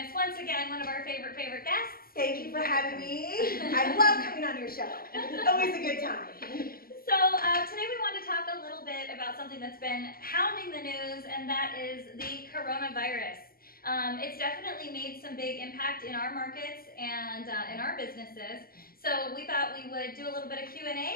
once again, one of our favorite guests. Thank you for having me. I love coming on your show. Always a good time. So today we want to talk a little bit about something that's been hounding the news, and that is the coronavirus. It's definitely made some big impact in our markets and in our businesses. So we thought we would do a little bit of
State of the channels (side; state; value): right; late; 0.43 ms